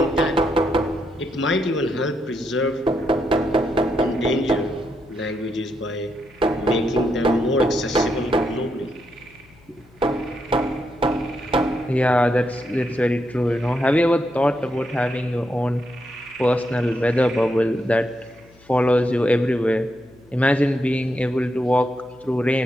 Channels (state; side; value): noise; left; hum, 27 dB below the sound